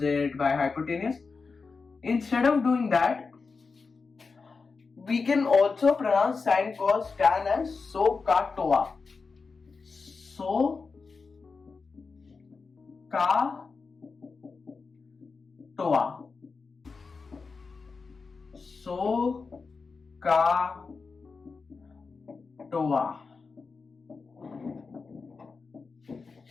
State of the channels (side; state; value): right; quieter; 4.6 dB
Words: by hypotenuse. Instead of doing that, we can also pronounce sin, cos, tan as SOHCAHTOA. SOHCAHTOA. SOHCAHTOA.